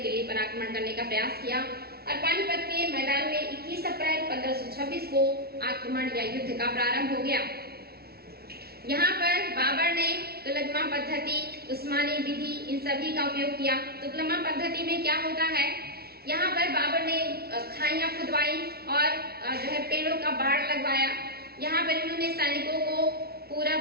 दिल्ली पर आक्रमण करने का प्रयास किया और पानीपत के मैदान में 21 अप्रैल 1526 को आक्रमण या युद्ध का प्रारंभ हो गया। यहाँ पर बाबर ने तुगलमा पद्धति, उस्मानी विधि, इन सभी का उपयोग किया। तुगलमा पद्धति में क्या होता है, यहाँ पर बाबर ने खाइयां खुदवाई और जो है पेड़ों का बाड़ लगवाया। यहाँ पर इन्होंने सैनिकों को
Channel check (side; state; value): left; late; 0.45 ms